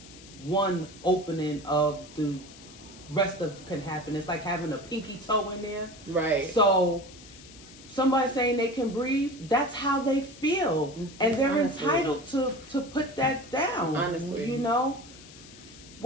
one opening of the rest of can happen. It's like having a pinky toe in there. Right. So somebody saying they can breathe, that's how they feel. Mm-hmm. And they're entitled to put that down. Honestly.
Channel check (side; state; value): left; noise; hiss, 19 dB below the sound